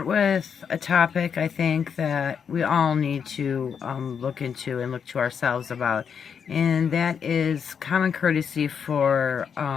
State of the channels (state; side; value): quieter; right; 7.0 dB